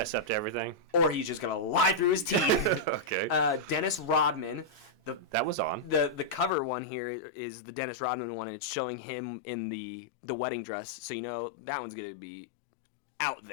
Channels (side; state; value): right; drops out; at 6.6 s